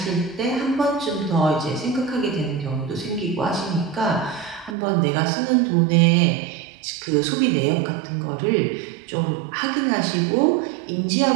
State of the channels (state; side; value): drops out; left; at 4.8 s